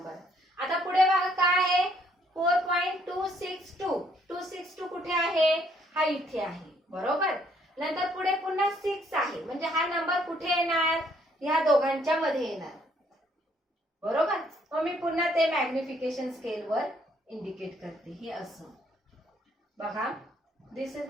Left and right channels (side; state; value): both; normal; correlation 0.67